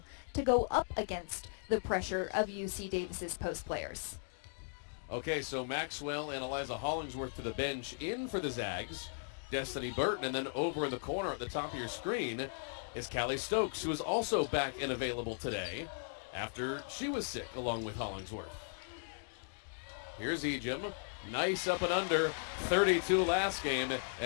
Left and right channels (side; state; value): right; silent; digital silence